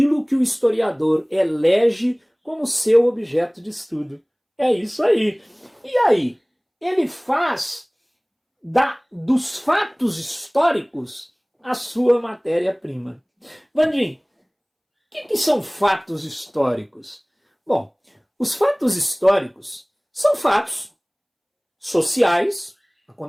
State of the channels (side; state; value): both; identical; correlation 1.00